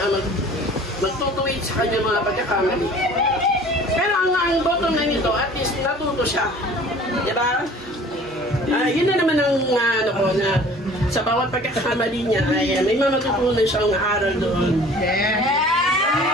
magtutuwid sa kanya mga pagkakamali. Pero ang bottom line nito, at least natuto siya. Di ba? Yun na naman ang ano ko na sa bawat pagkakamali niya ay may matutunan siyang aral doon.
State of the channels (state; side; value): normal; both; correlation 0.48